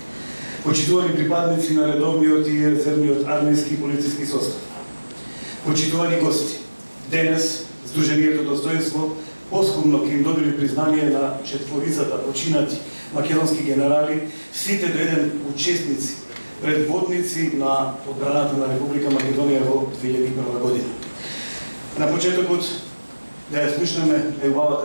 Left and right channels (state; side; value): inverted; both; correlation -1.00